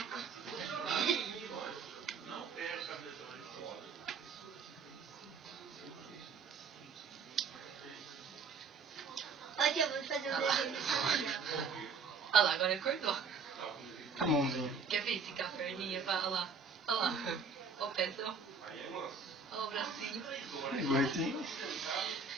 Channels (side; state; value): left; quieter; 5.0 dB